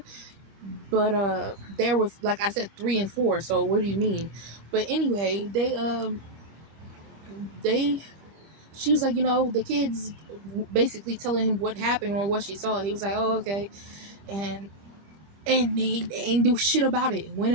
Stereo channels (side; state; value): left; late; 25 ms